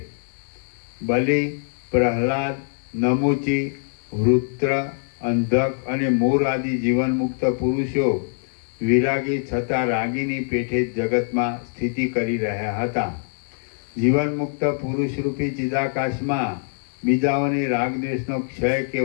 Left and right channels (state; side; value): silent; right; digital silence